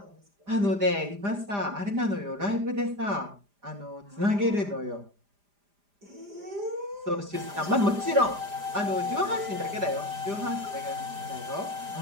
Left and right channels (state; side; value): late; left; 5.0 ms